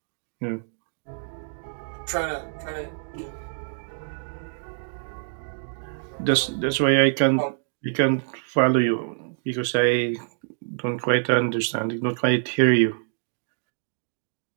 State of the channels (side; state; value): left; silent; digital silence